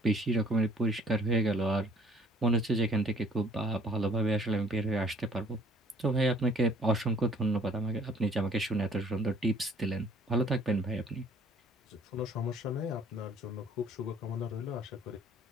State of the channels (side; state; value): both; normal; correlation 0.56